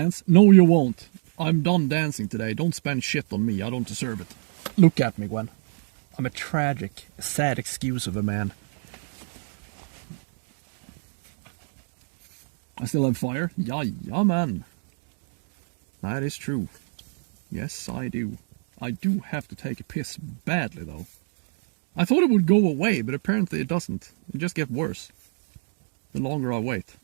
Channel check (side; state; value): left; silent; digital silence